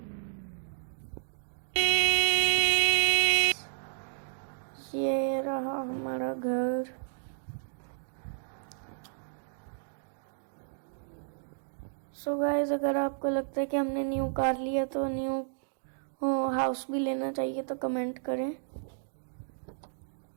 ये रहा हमारा घर। सो गाइस अगर आपको लगता है कि हमने न्यू कार लिया तो न्यू हाउस भी लेना चाहिए तो कमेंट करें,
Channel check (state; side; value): silent; left; digital silence